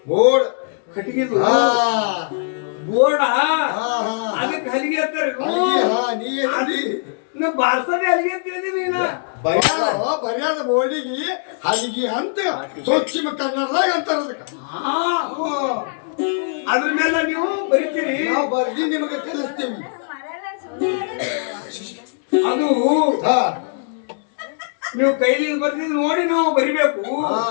ಬೋರ್ಡ್ ಕಟ್ಟಿಗೆದು ಬೋರ್ಡ ಅದಕ್ಕೆ ಹಲಿಗೆ ಅಂತಾರೆ. ನಾ ಬಾರ್ಸದೆ ಹಲಿಗೆ ಅಂತ ಹೇಳಿದೀನಿ ನೀನು ಬರ್ಯಾದ ಬೋರ್ಡಿಗೆ ಹಲಿಗೆ ಅಂತ ಸ್ವಚ್ಛ ಕನ್ನಡದಾಗ ಅಂತಾರ ಅದಕ್ಕೆ. ಅದ್ರ ಮೇಲೆ ನೀವು ಬರೀತೀರಿ ನಾವು ಬರ್ದಿ ನಿಮಗೆ ಕಲಿಸ್ತೀವಿ. ಅದು ನೀವು ಕೈಲಿ ಬರ್ತಿದ್ ನೋಡಿ ನಾವು ಬರಿಬೇಕು.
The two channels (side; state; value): right; silent; digital silence